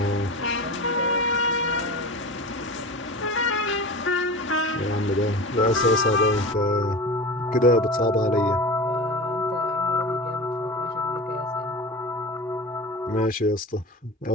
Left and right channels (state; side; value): normal; both; correlation 0.31